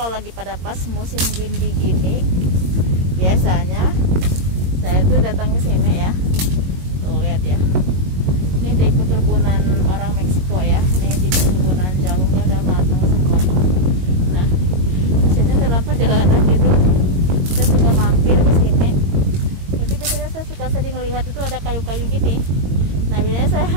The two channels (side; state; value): left; late; 22 ms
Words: kalau lagi pada pas musim gini biasanya saya tuh datang ke sini ya. Tuh lihat ya. Ini di perkebunan orang Meksiko ya. Ini di perkebunan jalungnya udah matang semua. Nah, biasanya dalam perjalanan gitu saya suka mampir ke sini. Jadi biasanya saya suka sering lihat itu ada kayu-kayu gini. Nah, biasanya saya